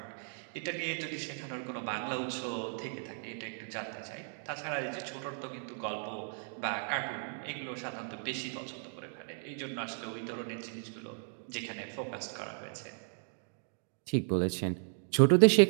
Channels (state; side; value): silent; left; 54 dB below the other